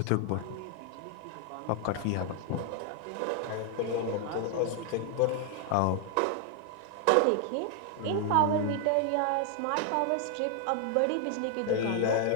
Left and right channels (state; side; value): different; both; correlation 0.00